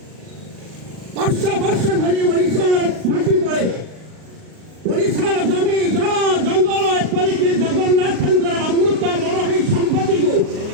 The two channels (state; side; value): late; left; 38 ms